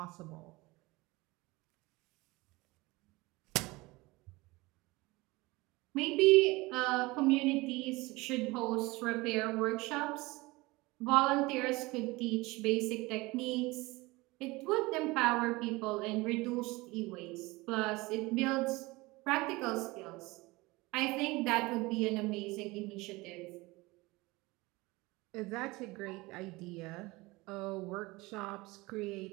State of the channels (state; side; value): quieter; left; 22.2 dB